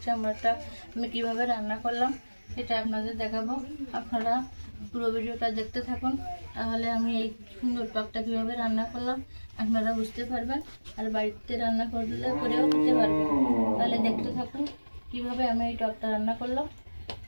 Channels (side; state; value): both; inverted; correlation -1.00